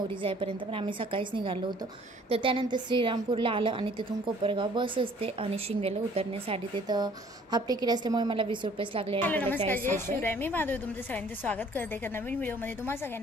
जाईपर्यंत, पण आम्ही सकाळीच निघालो होतो। तर त्यानंतर श्रीरामपूरला आलं आणि तिथून कोपरगाव बस असते आणि शिंगव्याला उतरण्यासाठी तिथं हाफ तिकीट असल्यामुळे मला 20 रुपयेच लागले आणि त्याला 40 रुपये। मी माधवी तुमचं सगळ्यांचं स्वागत करते एका नवीन व्हिडिओमध्ये। तुम्हा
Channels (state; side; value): normal; both; correlation 0.56